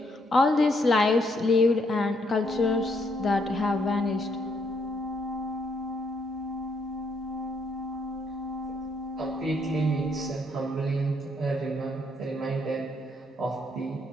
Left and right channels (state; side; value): normal; both; correlation 0.72